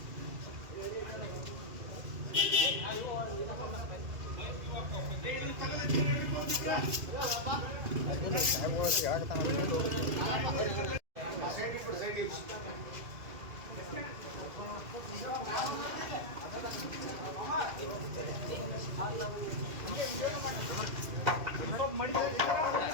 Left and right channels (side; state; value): left; late; 2.3 ms